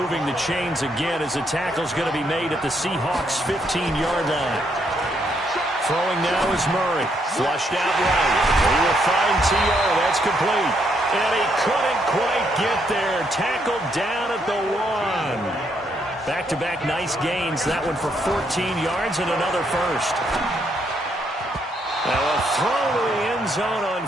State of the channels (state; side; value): normal; both; correlation 0.74